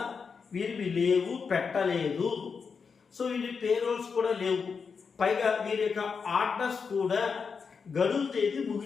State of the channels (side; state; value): right; quieter; 5.6 dB